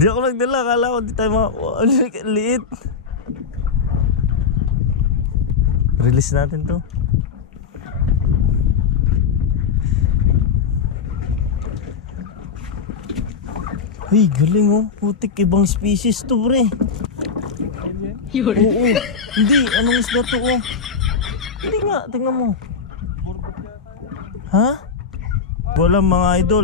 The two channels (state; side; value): quieter; right; 5.7 dB